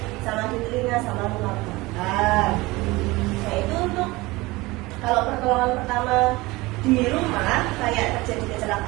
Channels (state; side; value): quieter; left; 21.5 dB